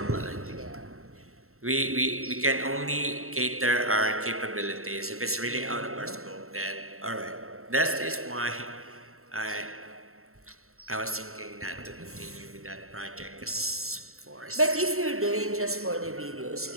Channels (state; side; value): late; left; 0.63 ms